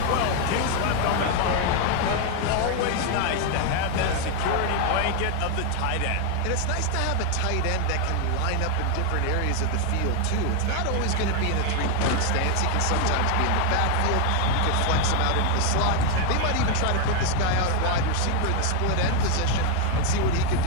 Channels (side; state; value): both; different; correlation 0.01